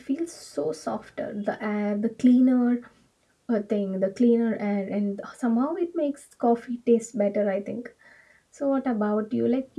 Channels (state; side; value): identical; both; correlation 1.00